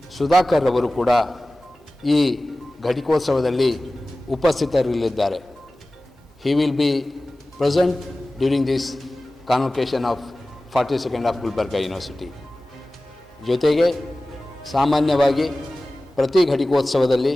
ಸುಧಾಕರ್ ಅವರು ಕೂಡ ಈ ಘಟಿಕೋತ್ಸವದಲ್ಲಿ ಉಪಸ್ಥಿತರಿರಲಿದ್ದಾರೆ. He will be present during this convocation of 42nd of Gulbarga University. ಜೊತೆಗೆ ಸಾಮಾನ್ಯವಾಗಿ ಪ್ರತಿ ಘಟಿಕೋತ್ಸವದಲ್ಲಿ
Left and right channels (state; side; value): normal; both; correlation 0.97